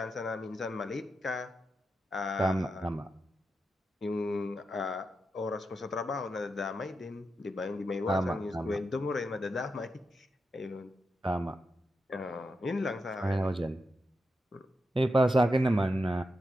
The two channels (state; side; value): normal; both; correlation 0.87